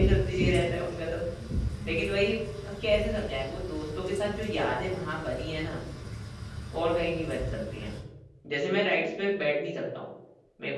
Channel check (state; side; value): identical; both; correlation 1.00